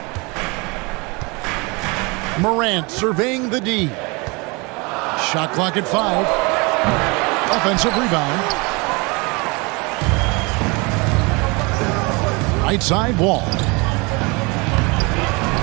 Morant surveying the D. Shot clock at 5. Offensive rebound. Right side, Wall.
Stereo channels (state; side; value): quieter; left; 27.8 dB